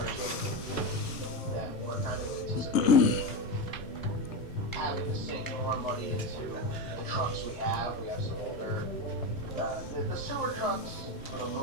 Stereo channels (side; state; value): both; normal; correlation 0.16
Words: getting that we're kind of anticipating having to sink more money into the trucks we have. We have some older, the sewer trucks for the